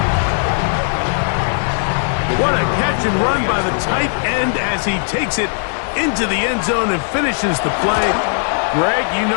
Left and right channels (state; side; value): silent; right; digital silence